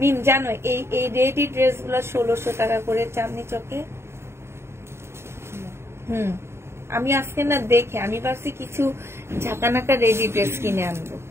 জানো এই রেডি ড্রেস গুলো 1600 টাকা করে চাঁদনি চকে। আমি আজকে না দেখে আমি ভাবছি কিছু ঝাঁকানাকা রেডি ড্রেস কিনে আনবো,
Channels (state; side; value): late; left; 0.12 ms